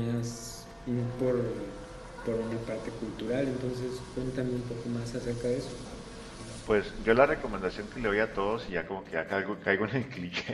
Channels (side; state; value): both; identical; correlation 1.00